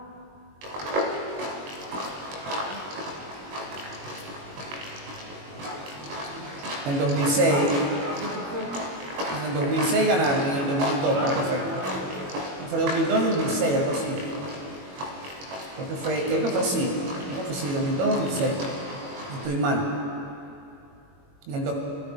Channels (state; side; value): late; left; 21 ms